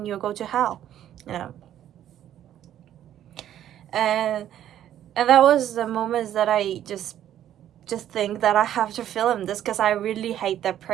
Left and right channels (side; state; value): left; quieter; 11.3 dB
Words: you go to hell, you know. And that was the moments that I just think that I have to film this because I really hate that